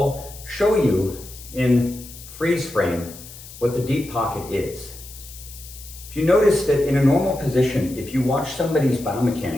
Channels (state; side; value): noise; left; hiss, 16 dB below the sound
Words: show you in freeze frame what the deep pocket is. If you notice that in a normal position, if you watch somebody's